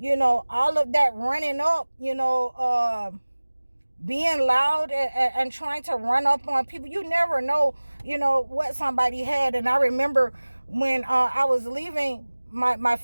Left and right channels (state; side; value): inverted; both; correlation -1.00